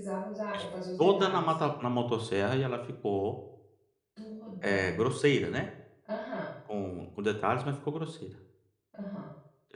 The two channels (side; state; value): both; identical; correlation 1.00